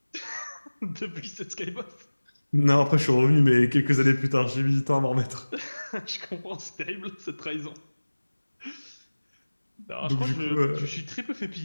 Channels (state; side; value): inverted; both; correlation -1.00